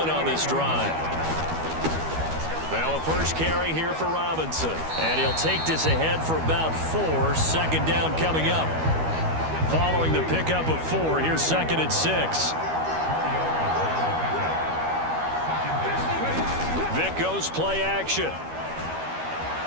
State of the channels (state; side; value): late; left; 12 ms